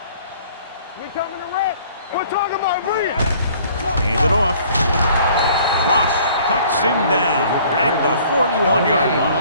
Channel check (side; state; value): both; inverted; correlation -0.55